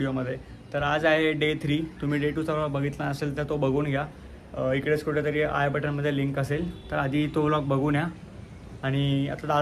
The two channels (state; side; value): identical; both; correlation 1.00